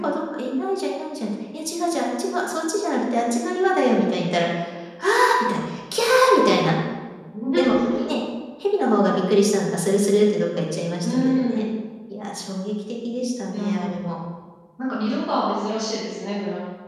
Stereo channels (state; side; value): identical; both; correlation 1.00